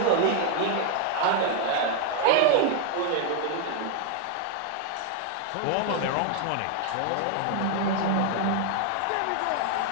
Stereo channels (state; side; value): different; both; correlation 0.01